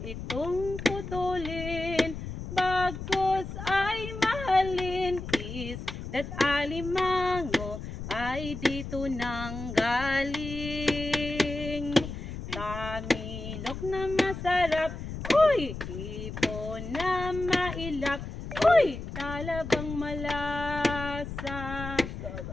itong putulin, bagkus ay mahalin, isda't alimango ay dito nang galing. Tamilok na masarap, uy, Uy, hipon na mailap. Uy, talabang malasa.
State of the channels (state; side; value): noise; left; rumble, 8 dB below the sound